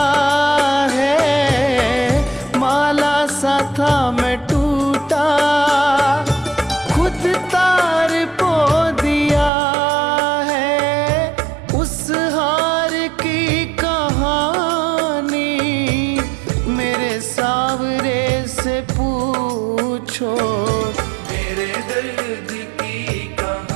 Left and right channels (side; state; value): left; drops out; at 9.5 s